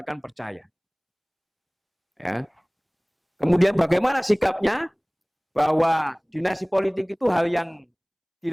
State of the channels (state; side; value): identical; both; correlation 1.00